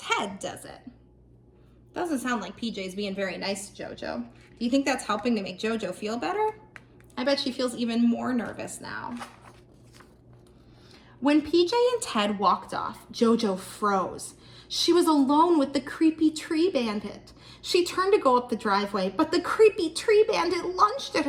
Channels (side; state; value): both; identical; correlation 1.00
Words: does it. Doesn't sound like PJ's being very nice to Jojo. Do you think that's helping to make Jojo feel better? I bet she feels even more nervous now. When PJ and Ted walked off, Jojo froze. She was alone with the creepy tree bandit. She turned to go up the driveway, but the creepy tree bandit lunged at